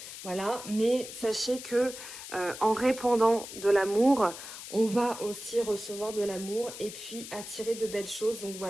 voilà. Mais sachez que en répandant de l'amour, on va aussi recevoir de l'amour et puis attirer de belles choses. Donc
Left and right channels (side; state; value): left; noise; hiss, 11 dB below the sound